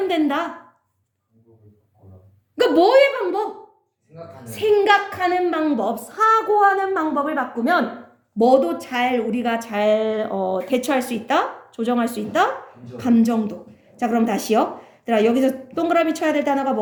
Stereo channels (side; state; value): both; identical; correlation 1.00